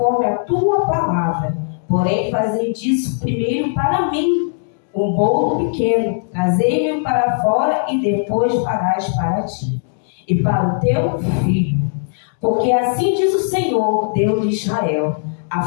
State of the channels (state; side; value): silent; right; digital silence